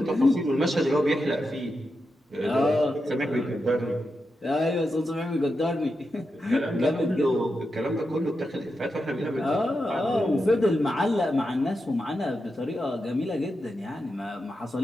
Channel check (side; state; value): both; normal; correlation 0.88